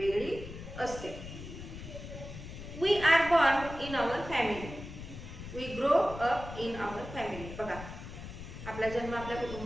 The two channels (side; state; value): left; noise; rumble, 11 dB below the sound